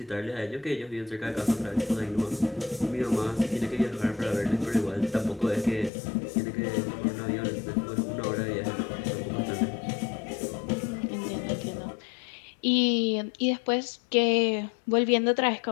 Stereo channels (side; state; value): right; drops out; at 5.9 s